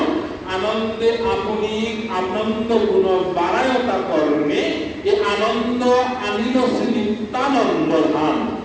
আনন্দে আপনি আনন্দ গুণ বাড়ায়তা করণে, এ আনন্দ আনিল শ্রী নিত্যানন্দ ধাম।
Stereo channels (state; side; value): identical; both; correlation 1.00